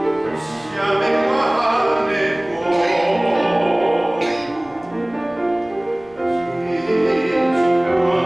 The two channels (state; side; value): noise; right; rumble, 28 dB below the sound